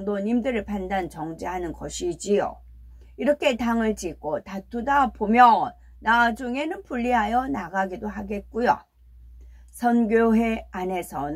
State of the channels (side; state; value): both; identical; correlation 1.00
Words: 판단 정죄하는 것이지요. 이렇게 당을 짓고 다투다 보면 나중에는 분리하여 나가기도 하겠고요. 선교회